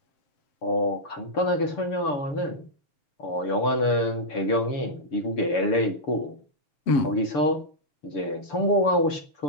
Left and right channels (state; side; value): late; right; 6.9 ms